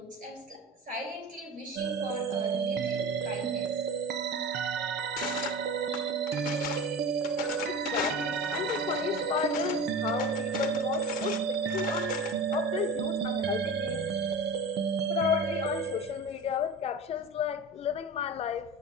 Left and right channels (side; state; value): both; normal; correlation 0.32